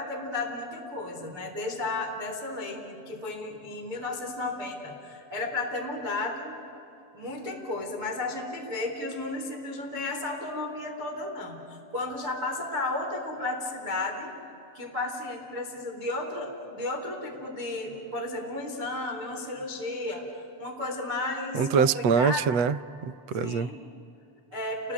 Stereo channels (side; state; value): left; late; 8.1 ms